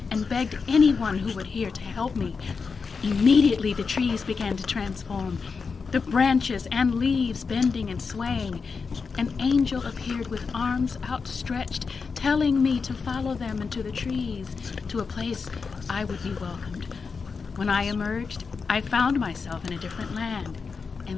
and begged anyone who would hear to help me. Immediately the trees began to transform, the branches and leaves bending and swaying. An angel appeared with arms outstretched, telling me to follow them into the trees, to a place I would be welcomed. When I emerged, I found myself in a different land,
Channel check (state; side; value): quieter; right; 5.1 dB